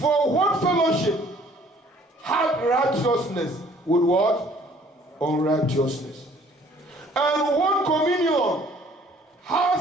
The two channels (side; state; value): both; normal; correlation 0.57